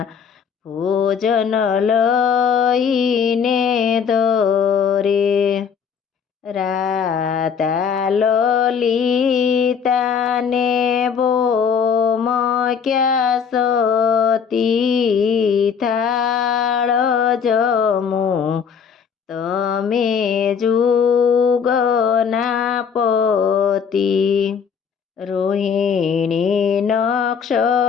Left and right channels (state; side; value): quieter; right; 6.8 dB